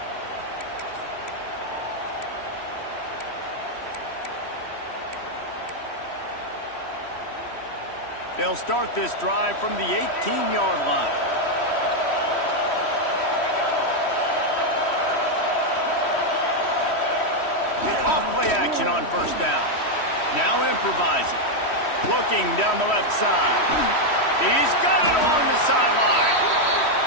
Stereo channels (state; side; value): late; right; 3.1 ms